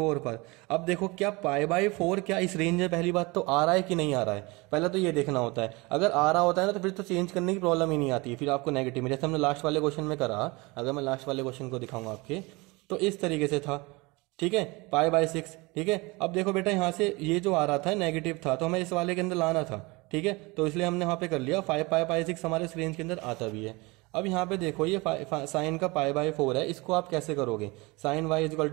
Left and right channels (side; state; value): left; quieter; 24.8 dB